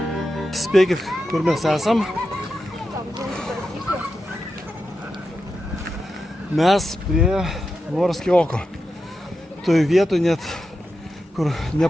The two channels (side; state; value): both; normal; correlation 0.89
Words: Spėkit, kur mes esam. Mes prie Morskio oko. Toj vietoj net, kur